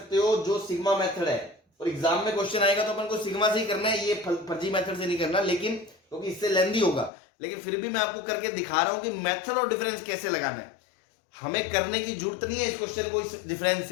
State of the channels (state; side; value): drops out; right; at 7.1 s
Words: हो जो सिग्मा मेथड है, और एग्जाम में क्वेश्चन आएगा तो अपन को सिग्मा से ही करना है, ये फर्जी मेथड से नहीं करना, लेकिन क्योंकि इससे लेंदी होगा, लेकिन फिर भी मैं आपको करके दिखा रहा हूं कि मेथड और डिफरेंस कैसे लगाना है। हमें करने की जरूरत नहीं है इस क्वेश्चन को इस डिफरेंस